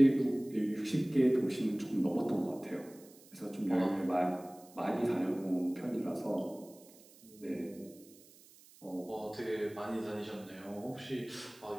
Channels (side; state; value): right; noise; hiss, 24 dB below the sound